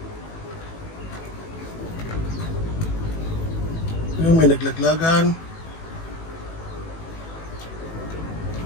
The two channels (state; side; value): late; right; 18 ms